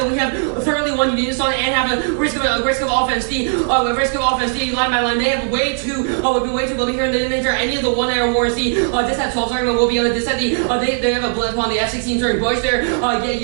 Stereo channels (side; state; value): left; silent; 63 dB below the other